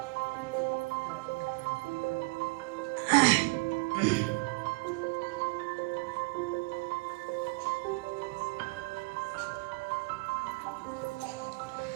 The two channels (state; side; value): quieter; left; 28.6 dB